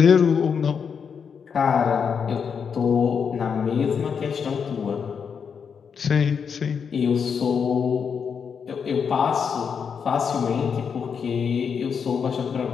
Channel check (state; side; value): quieter; right; 6.6 dB